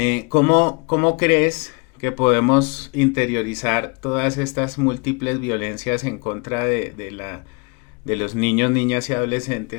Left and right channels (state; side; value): quieter; right; 31.9 dB